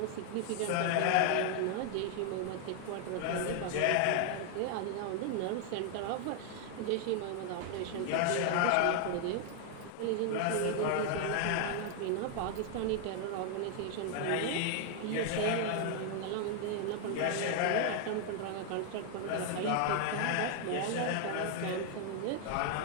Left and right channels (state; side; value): different; both; correlation 0.00